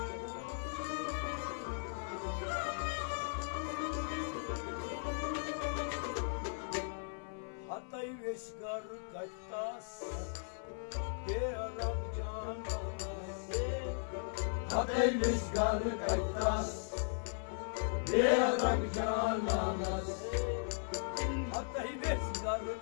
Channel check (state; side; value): silent; right; 53 dB below the other